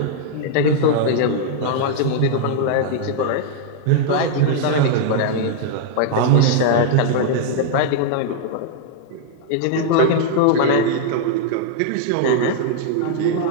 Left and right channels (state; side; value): different; both; correlation -0.01